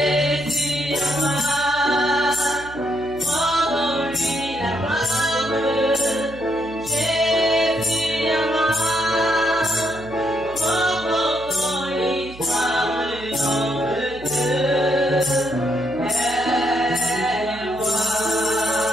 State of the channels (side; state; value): right; noise; hum, 18 dB below the sound